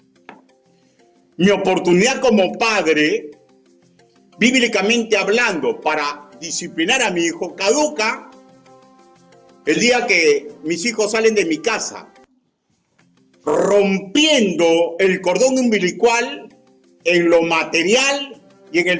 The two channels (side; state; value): both; identical; correlation 1.00